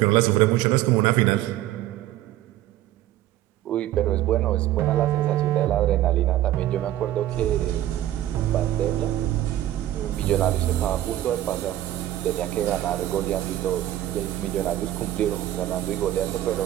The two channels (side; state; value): left; quieter; 13.5 dB